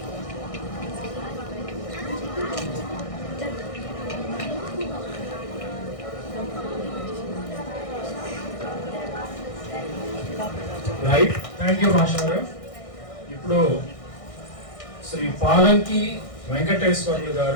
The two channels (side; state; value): right; late; 1.6 ms